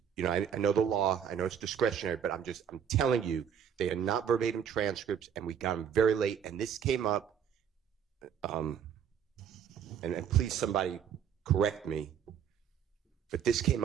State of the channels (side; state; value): left; quieter; 8.2 dB